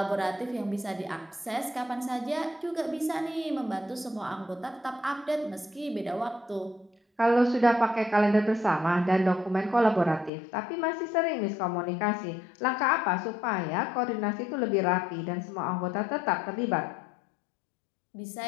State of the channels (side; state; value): right; drops out; at 10.3 s